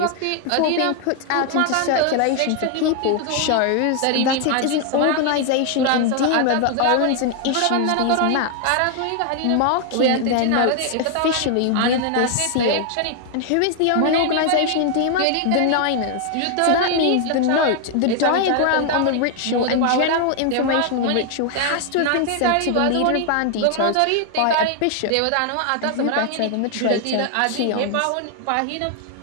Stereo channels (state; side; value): different; both; correlation 0.00